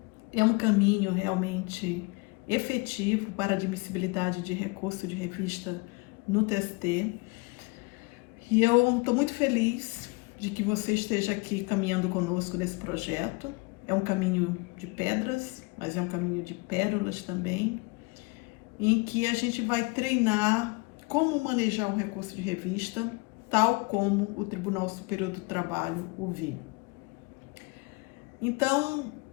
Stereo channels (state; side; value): quieter; right; 28.1 dB